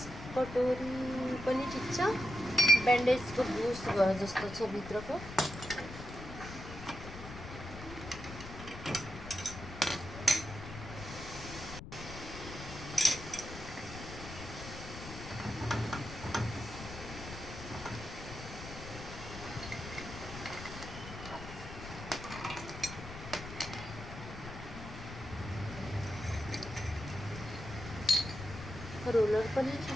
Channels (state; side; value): noise; left; rumble, 11 dB below the sound